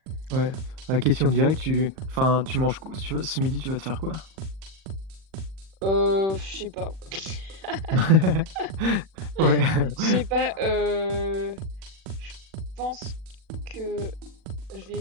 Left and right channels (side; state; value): left; late; 39 ms